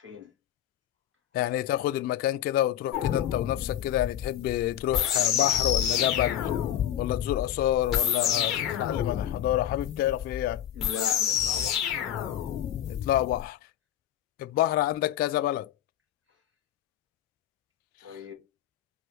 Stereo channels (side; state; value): right; quieter; 11.1 dB